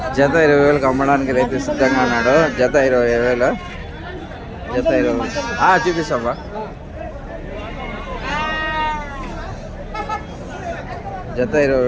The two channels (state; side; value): identical; both; correlation 1.00